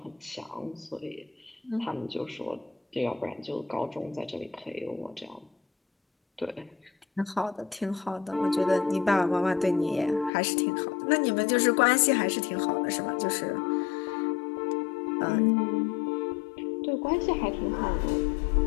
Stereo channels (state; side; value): drops out; right; at 10.3 s